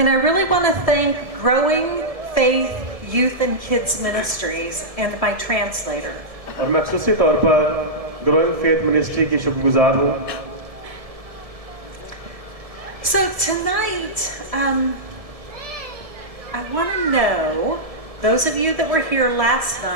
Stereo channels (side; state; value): left; late; 1.7 ms